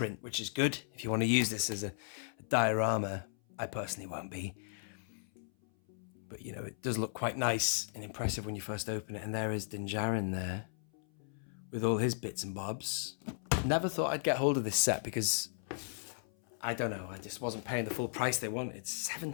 which is good. If you want to use this as a diorama, I personally won't be. But it does look quite nice and impressive when you first open it. And there is Din Djarin there with all his bits and bobs. Never thought I'd get hold of this set because I don't know, I just wasn't paying the full price they wanted. It's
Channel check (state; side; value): silent; right; 54 dB below the other